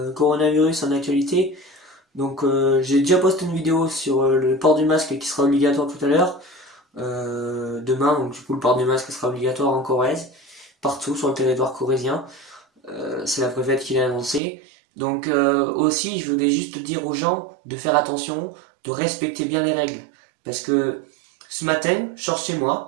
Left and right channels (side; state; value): left; drops out; at 14.4 s